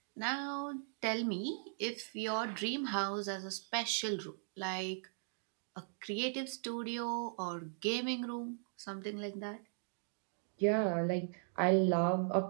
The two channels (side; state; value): left; silent; digital silence